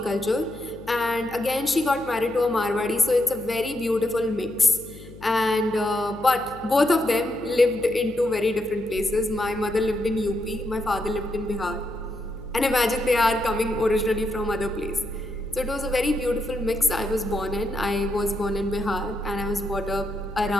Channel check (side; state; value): left; noise; hum, 17 dB below the sound